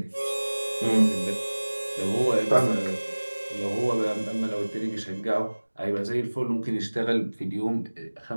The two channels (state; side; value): inverted; both; correlation -1.00